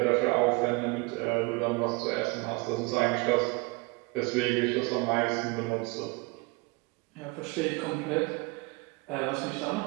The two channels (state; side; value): quieter; left; 27.4 dB